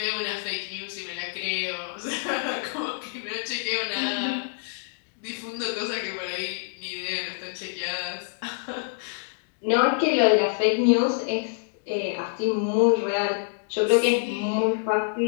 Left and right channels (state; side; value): silent; right; digital silence